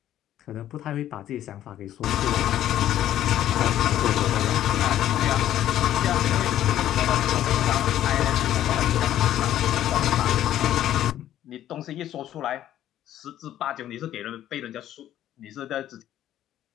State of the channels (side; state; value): right; quieter; 12.1 dB